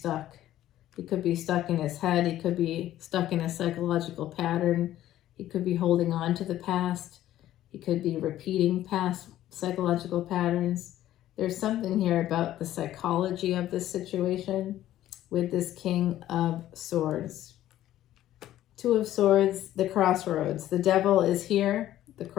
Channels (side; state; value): right; quieter; 13.3 dB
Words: He could be stuck in his head. He could be stuck in a psychological pattern. He could be holding on to the past. He could be repeating past psychological patterns. There's something here about the psychology of this situation with this King of Swords. Two of Swords, the Crossroads. The devil is here. The